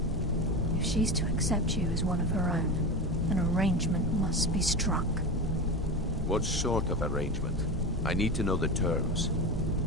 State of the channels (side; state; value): both; normal; correlation 0.23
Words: If she's to accept you as one of her own, an arrangement must be struck. What sort of arrangement? I need to know the terms.